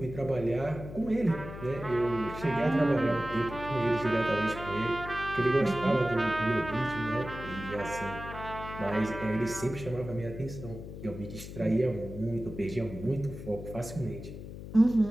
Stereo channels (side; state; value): left; noise; hum, 11 dB below the sound